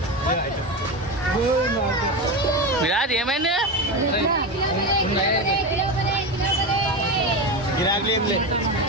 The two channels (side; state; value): both; normal; correlation 0.19